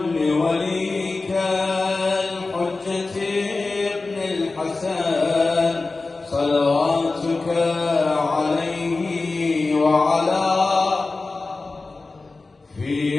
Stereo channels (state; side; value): quieter; right; 3.6 dB